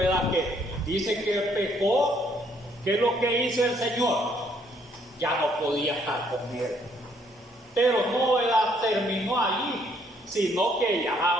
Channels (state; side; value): normal; both; correlation 0.67